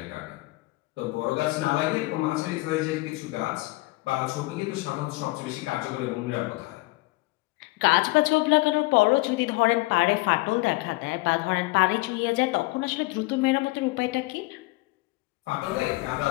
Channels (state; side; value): quieter; right; 22.3 dB